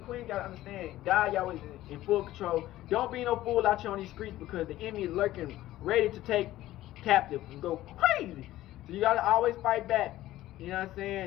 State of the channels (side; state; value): right; quieter; 15.1 dB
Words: queens gotta understand, God, Yahweh is in full control. Don't be no fool out here on these streets, because the enemy is lurking, ready to take captive and go crazy. So you gotta always fight back. You know what I'm